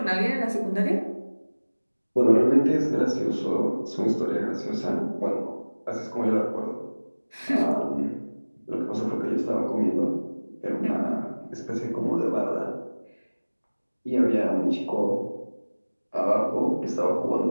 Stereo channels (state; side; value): inverted; both; correlation -1.00